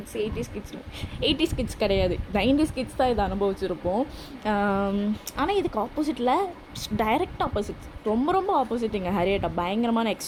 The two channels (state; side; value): identical; both; correlation 1.00